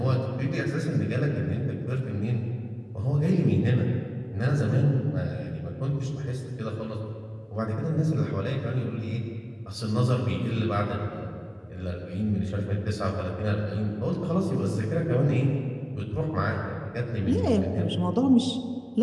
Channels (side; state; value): both; identical; correlation 1.00